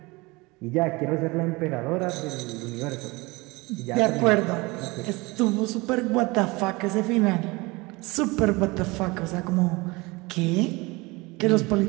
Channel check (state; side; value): quieter; left; 24.0 dB